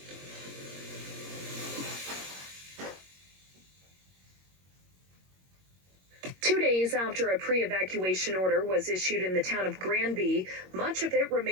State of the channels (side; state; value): left; late; 21 ms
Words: 2 days after a pre-evacuation order was issued in the town of Granby, much of it